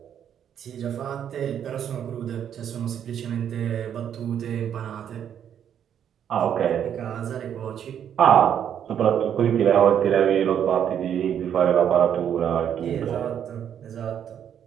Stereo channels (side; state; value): left; quieter; 9.1 dB